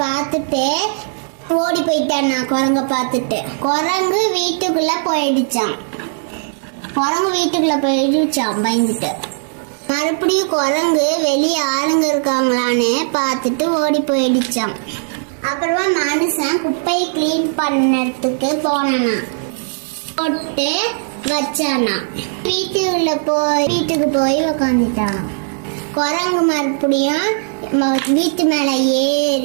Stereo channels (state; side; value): silent; left; digital silence